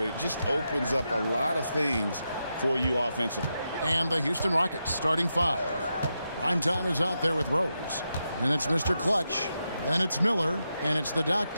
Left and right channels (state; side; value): inverted; both; correlation -0.86